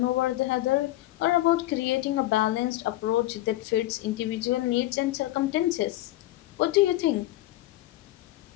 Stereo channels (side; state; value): right; quieter; 16.1 dB